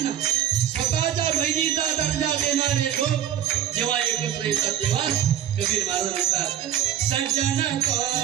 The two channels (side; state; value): left; quieter; 10.6 dB